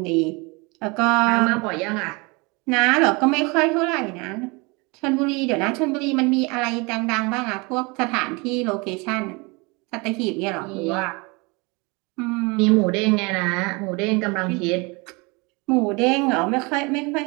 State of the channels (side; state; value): left; quieter; 27.7 dB